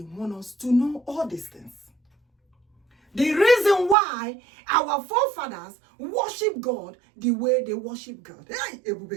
wants us to know all these things. The reason why our forefathers worship God the way they worship God. Hey,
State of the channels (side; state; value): left; drops out; at 4.0 s